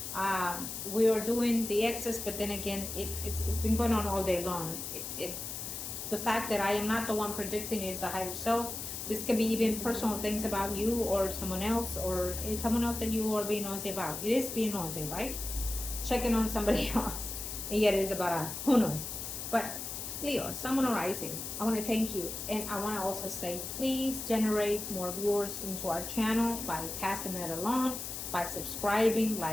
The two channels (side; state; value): left; noise; hiss, 6 dB below the sound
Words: We are doing the excess, but then again, it's been going on all day long. The fact that I am not the one predicting is the higher self. This can be even personal things about you or someone else, or someone else that you are being nosy about. It is being nosy, right? Checking on somebody else, and yet it is about us. Who knows? But Leo, Someone Arising, I want to thank you, and I want to also say, please generate more viewers into our channel by passing that along, by subscribing,